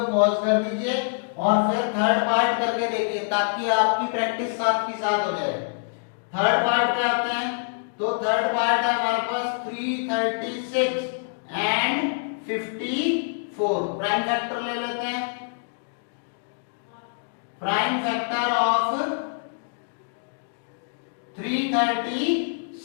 पॉज कर दीजिए और फिर थर्ड पार्ट करके देखिए, ताकि आपकी प्रैक्टिस साथ की साथ हो जाए। थर्ड पार्ट पे आते हैं। तो थर्ड पार्ट है हमारे पास 336 एंड 54। प्राइम फैक्टर ले लेते हैं। Prime factor of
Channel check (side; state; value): right; silent; digital silence